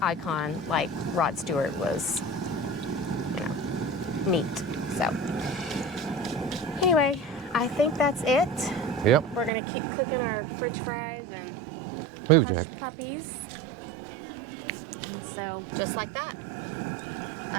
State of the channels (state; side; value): drops out; left; at 9.5 s